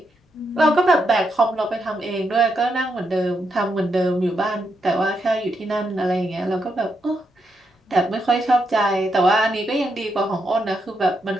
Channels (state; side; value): normal; both; correlation 0.81